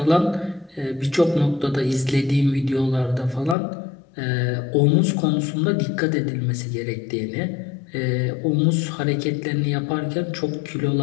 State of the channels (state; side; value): drops out; right; at 3.6 s